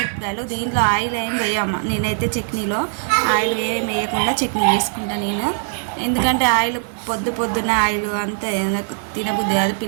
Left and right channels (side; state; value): left; silent; digital silence